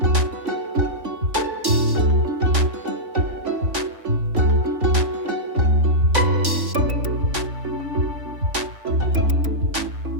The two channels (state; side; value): late; left; 3.5 ms